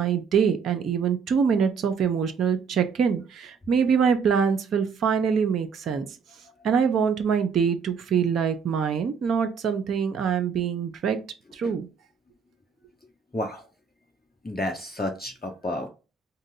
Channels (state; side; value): quieter; left; 6.1 dB